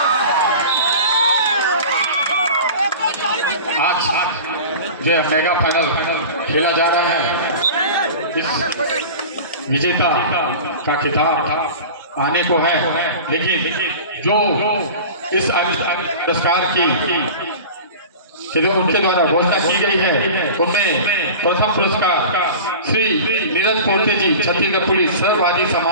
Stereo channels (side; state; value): both; inverted; correlation -0.36